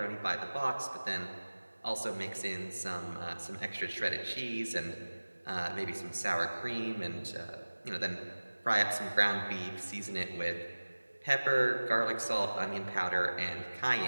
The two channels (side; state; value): both; inverted; correlation -1.00